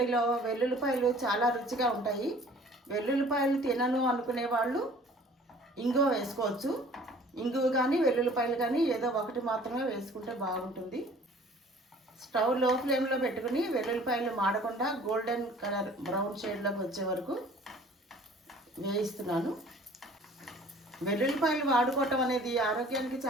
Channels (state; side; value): normal; both; correlation 0.51